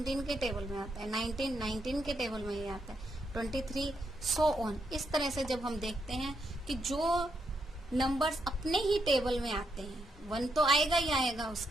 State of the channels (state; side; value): normal; both; correlation 0.79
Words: के टेबल में आता है। 19 19 के टेबल में ही आता है। 23 सो ऑन। इस तरह से जब हम देखते हैं कि जो नंबर्स अपने ही टेबल में आते हैं, 1 तो आएगा ही आएगा